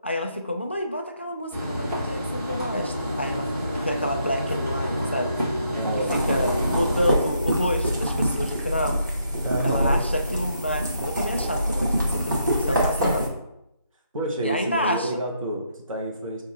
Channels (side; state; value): both; inverted; correlation -0.74